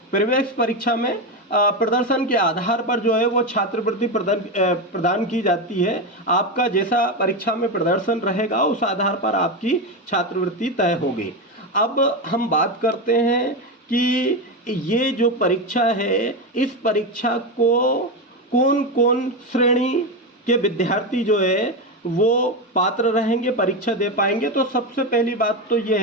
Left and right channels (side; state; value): both; normal; correlation 0.14